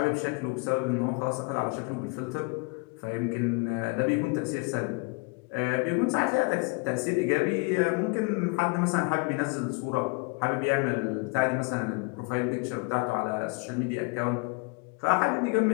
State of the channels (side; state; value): right; quieter; 30.8 dB